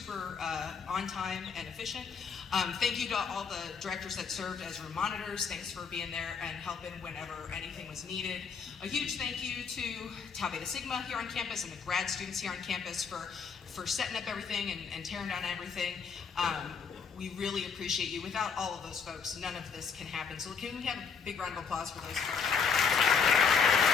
on time and efficient. Thank you to all the directors that served as room monitors. Thanks for being there and helping whenever anything was needed. A huge thank you to Tau Beta Sigma here on campus and the grad students here on campus for setting up everything and tearing down everything. We really appreciate you. Without all of those folks, none of this can happen. So can we have a big round of applause for those folks?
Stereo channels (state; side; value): quieter; right; 6.0 dB